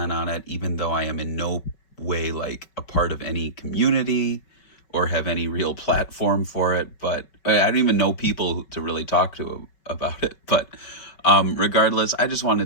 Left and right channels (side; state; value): right; late; 5.3 ms